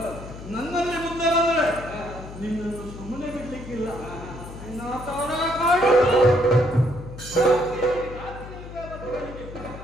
ನನ್ನಲ್ಲಿ ಮುಂದೆ ಬಂದರೆ ನಿನ್ನನ್ನು ಸುಮ್ಮನೆ ಬಿಡ್ಲಿಕ್ಕಿಲ್ಲ. ನಿನ್ನ ತವರ ಕಾಡುವುದು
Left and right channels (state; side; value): noise; left; hum, 13 dB below the sound